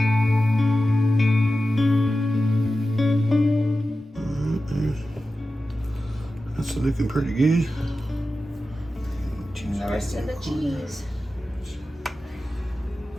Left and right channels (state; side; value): normal; both; correlation 0.93